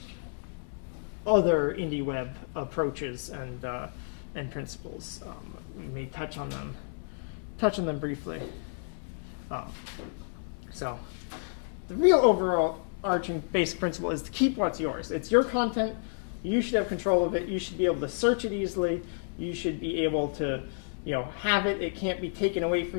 other Indieweb approaches and principles. We may touch on them briefly. So the real overall arching basic principle is to keep what's yours. It's your content. You should have control of it. You should be able to search it easily. You should be able to have it. It can't be taken away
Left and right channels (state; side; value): silent; right; 58 dB below the other